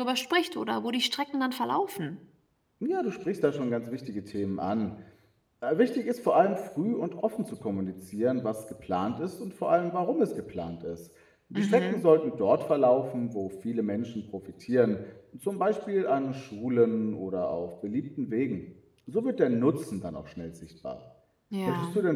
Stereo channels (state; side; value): identical; both; correlation 1.00